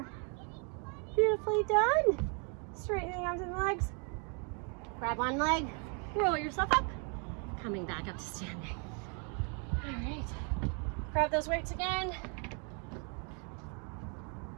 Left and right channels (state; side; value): quieter; left; 37.5 dB